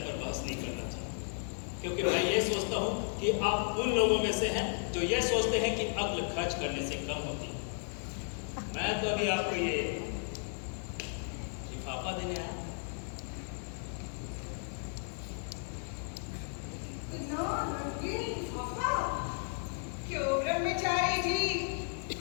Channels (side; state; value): right; silent; 55 dB below the other